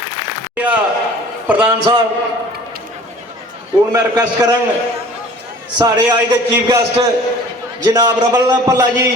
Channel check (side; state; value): both; normal; correlation 0.47